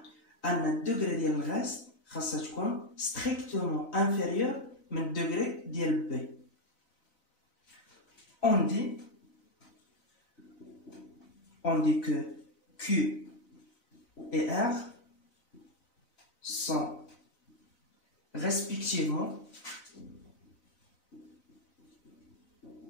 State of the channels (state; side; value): late; right; 4.0 ms